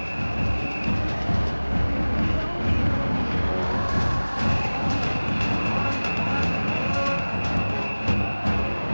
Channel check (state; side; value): inverted; both; correlation -1.00